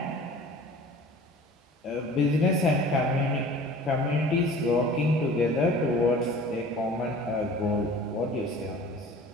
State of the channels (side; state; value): both; normal; correlation 0.44